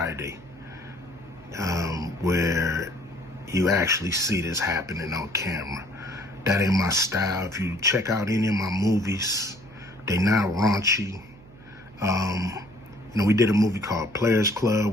where you actually see this happening on camera. That ain't my style. If you check out any of my movies, they not raunchy. We did a movie called Players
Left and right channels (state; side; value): noise; right; hum, 22 dB below the sound